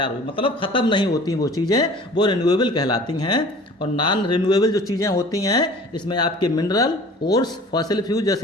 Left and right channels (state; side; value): normal; both; correlation 0.46